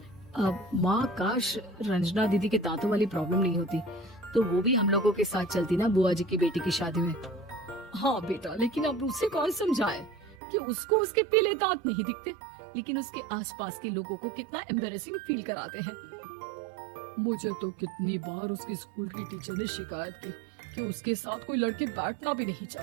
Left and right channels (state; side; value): drops out; left; at 10.4 s